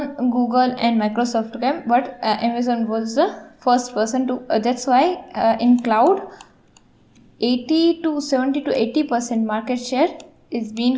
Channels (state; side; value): identical; both; correlation 1.00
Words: Google and Microsoft came, but Amazon was the first person to, that's why in cloud 70 to 80% market share is being